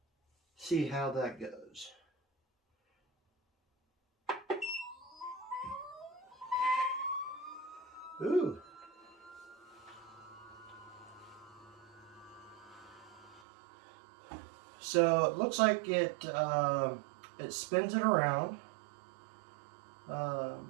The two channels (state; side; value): drops out; left; at 13.4 s